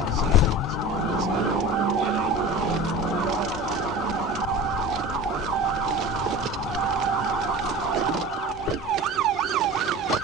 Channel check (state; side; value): normal; both; correlation 0.35